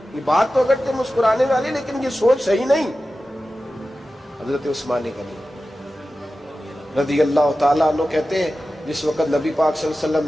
یہ بات تو اگر تے مسکرانے والی، لیکن یہ سوچ صحیح نہیں۔ حضرت عثمان غنی رضی اللہ تعالیٰ عنہ کہتے ہیں جس وقت نبی پاک صلی اللہ علیہ وسلم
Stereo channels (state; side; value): normal; both; correlation 0.94